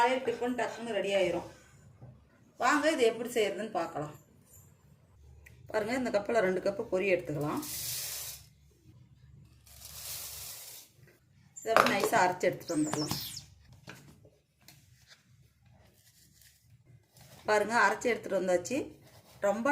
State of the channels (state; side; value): identical; both; correlation 1.00